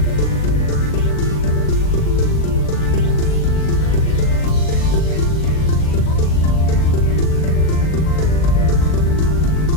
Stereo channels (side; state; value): right; late; 39 ms